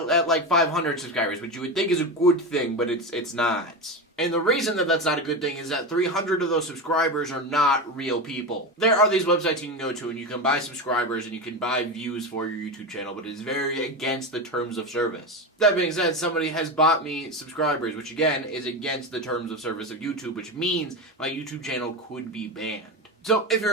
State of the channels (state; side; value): normal; both; correlation 0.19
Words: at like 500 subscribers, which you would think is a good thing, but it's not. And the reason that that's not a good thing is that 300 of those subscribers are not real people. There are these websites you can go to and you can buy subscribers and you can buy views for your YouTube channel, but it is very against the terms of service. That being said, somebody has bought me subscribers, which again is against the terms of service of YouTube, which means my YouTube channel could be banned. So if